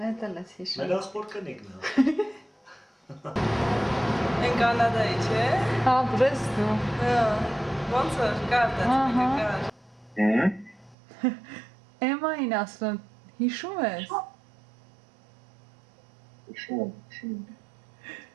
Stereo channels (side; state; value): left; drops out; at 11.0 s